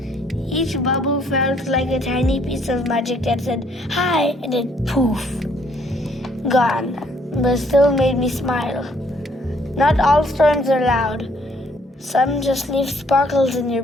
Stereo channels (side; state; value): both; normal; correlation 0.65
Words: Each bubble felt like a tiny piece of magic that said, hi, and then poof. gone, but still made me smile. Not all storms are loud. Some just leave sparkles in your